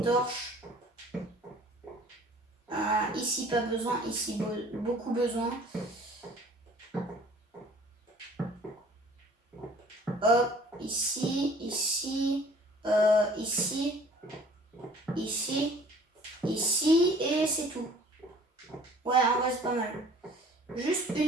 Ici, pas besoin, ici, beaucoup besoin. Hop, ici, ici, ici, et c'est tout. Ouais, en vrai, c'est pas mal. Juste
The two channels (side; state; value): both; normal; correlation 0.51